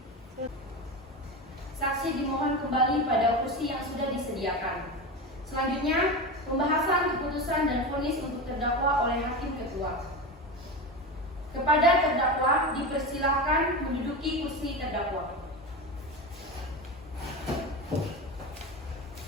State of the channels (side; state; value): both; normal; correlation 0.23